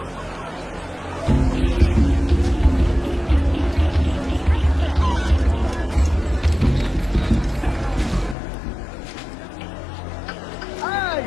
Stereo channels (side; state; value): right; drops out; at 8.3 s